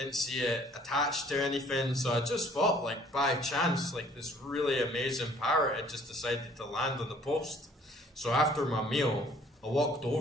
see it attached to anything, so I just thought, like, by chance, like, this really amazing parrot had just decided to land on the post. So after my meal, I walked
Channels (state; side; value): normal; both; correlation 0.57